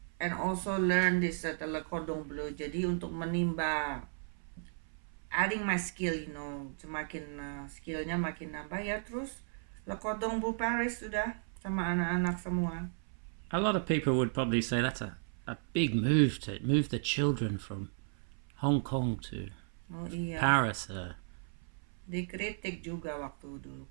And also learn this Le Cordon Bleu. Jadi untuk menimba adding my skill, semakin skillnya makin nambah ya. Terus Le Cordon Bleu Paris sudah sama anak-anak semua. A lot of people would probably say that's a big move to move the children from Hong Kong to Paris. Dikritik juga waktu dulu.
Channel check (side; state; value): left; silent; 55 dB below the other